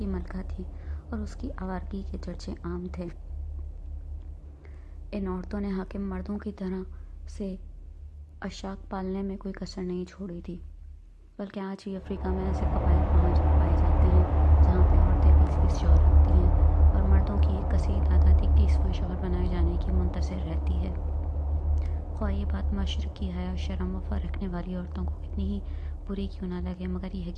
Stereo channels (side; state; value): both; identical; correlation 1.00